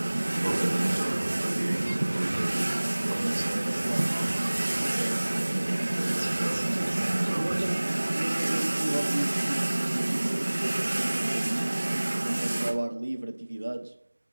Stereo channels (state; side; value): inverted; both; correlation -1.00